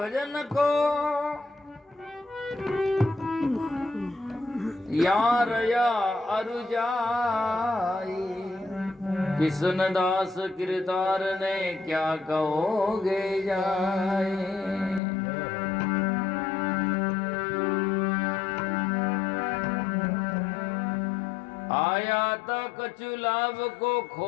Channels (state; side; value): drops out; right; at 15.0 s